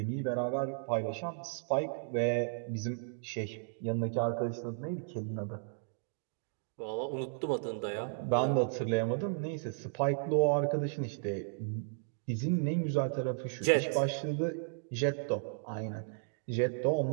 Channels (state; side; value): silent; left; digital silence